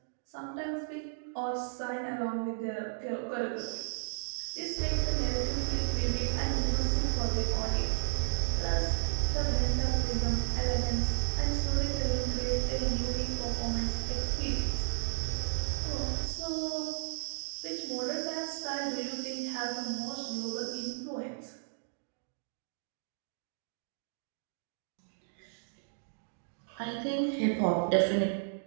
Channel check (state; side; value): silent; left; digital silence